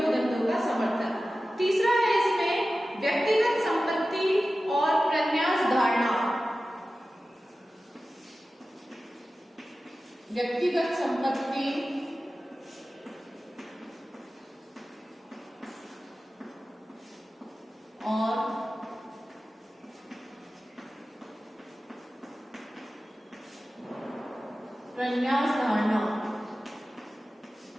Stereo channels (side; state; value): both; normal; correlation 0.95